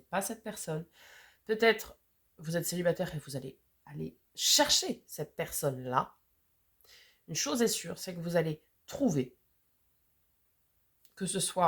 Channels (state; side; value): identical; both; correlation 1.00